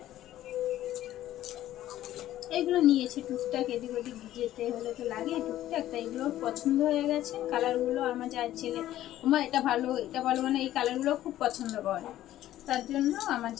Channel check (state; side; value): quieter; right; 13.4 dB